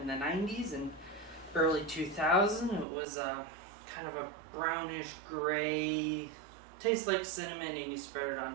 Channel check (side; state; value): left; drops out; at 2.9 s